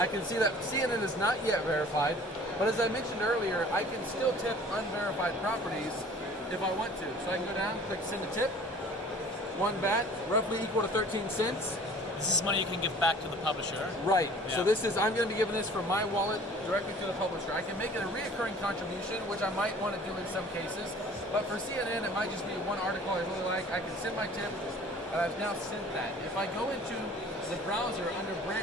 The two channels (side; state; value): both; normal; correlation 0.48